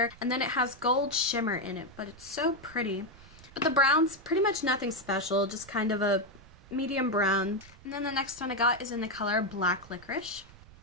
And then it has gold shimmer in it, but it's so pretty. But the brown's pretty much nothing special, just kind of a medium brown. And then the next one I got is in the color Black Licorice.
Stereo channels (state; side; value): noise; right; rumble, 21 dB below the sound